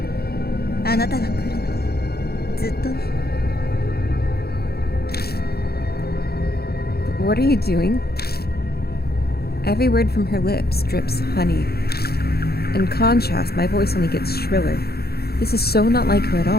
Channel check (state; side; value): late; right; 0.46 ms